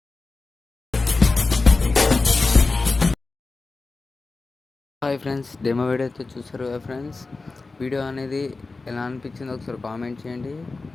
friends, demo video అయితే చూసారు కదా ఫ్రెండ్స్. వీడియో అనేది ఎలా అనిపించిందో ఒకసారి కామెంట్ చేయండి.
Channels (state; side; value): quieter; right; 3.7 dB